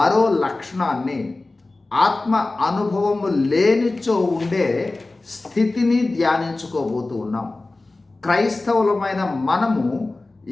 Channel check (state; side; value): quieter; right; 3.2 dB